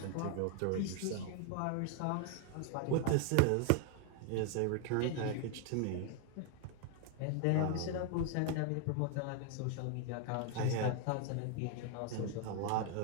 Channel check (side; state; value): both; different; correlation 0.00